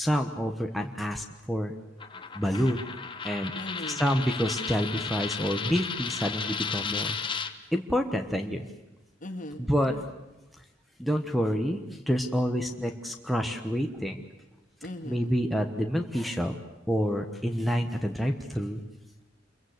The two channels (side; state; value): both; normal; correlation 0.82